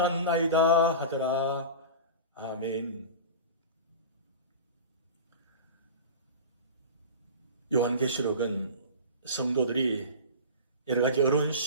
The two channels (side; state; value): both; inverted; correlation -0.31